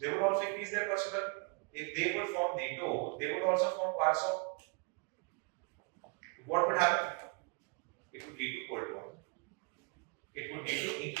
they would also increase their personnel. If they would form NATO, they would also form Warsaw. What would happen? It would lead to Cold War. It would lead to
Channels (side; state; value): left; quieter; 32.5 dB